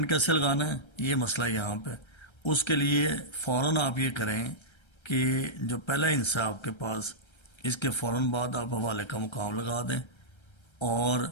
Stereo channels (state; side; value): late; right; 1.3 ms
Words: کیسے لگانا ہے، یہ مسئلہ یہاں پہ، اس کے لیے فوراً آپ یہ کریں کہ جو پہلا حصہ آپ کے پاس، اس کے فوراً بعد آپ حوالے کا مقام لگا دیں، اور